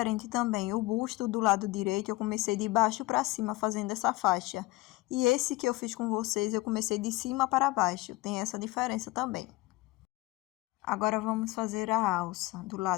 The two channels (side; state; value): right; quieter; 20.2 dB